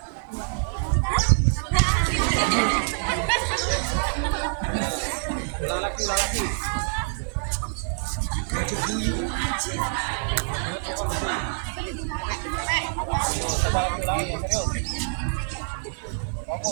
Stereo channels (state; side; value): silent; left; 61 dB below the other